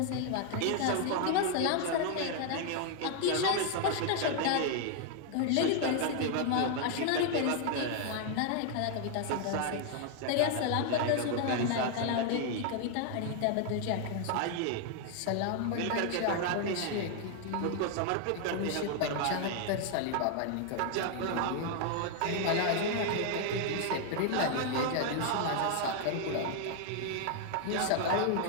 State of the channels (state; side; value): different; both; correlation 0.00